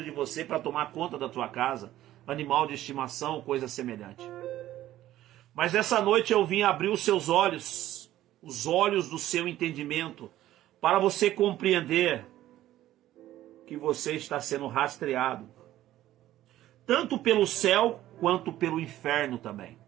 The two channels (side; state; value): left; quieter; 13.9 dB